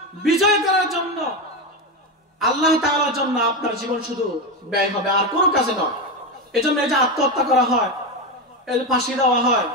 বিজয় করার জন্য আল্লাহ তাআলার জন্য আপনার জীবন শুধু ব্যয় হবে, আর কোনো কাজে নয়। এজন্য এই যে আত্মহত্যা করা হয়, এই যে ফাঁসি দেওয়া হয়,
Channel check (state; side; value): normal; both; correlation 0.14